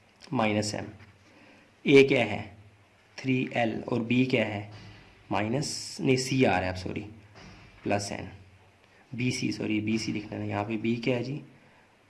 -m, A क्या है 3L और B क्या है C आ रहा है, अब sorry +n, BC, sorry BC लिखना है यहाँ पे, B क्या है जी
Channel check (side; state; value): both; identical; correlation 1.00